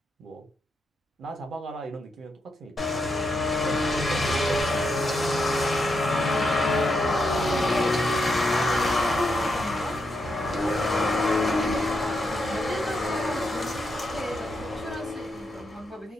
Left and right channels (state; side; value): normal; both; correlation 0.82